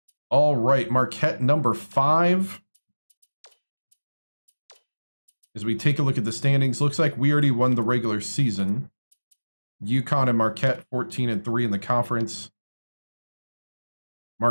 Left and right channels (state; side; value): inverted; both; correlation -1.00